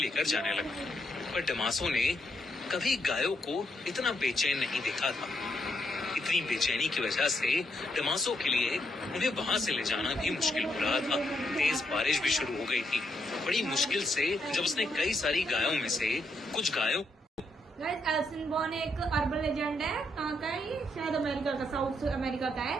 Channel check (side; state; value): both; normal; correlation 0.78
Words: जाने लगा। पर डमासो ने कभी गायों को इतना बेचैन नहीं देखा था। इतनी बेचैनी की वजह से डमासो के लिए उन्हें वहां से ले जाना भी मुश्किल हो रहा था। तेज बारिश भी शुरू हो गई थी। बड़ी मुश्किल से जब उसने कई सारी गायों में से कुछ गायों गाइस, एल सिल्वोन एक अर्बन लेजेंड है। कहाँ का है ये? शायद अमेरिका का, साउथ अमेरिका का है।